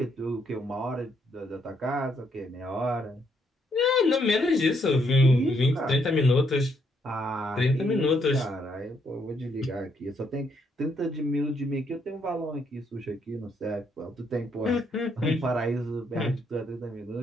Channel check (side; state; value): both; normal; correlation 0.73